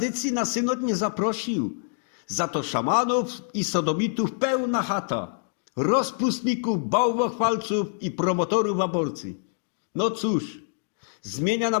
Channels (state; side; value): silent; right; digital silence